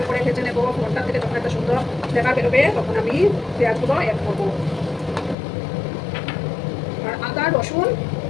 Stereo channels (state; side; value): drops out; right; at 5.4 s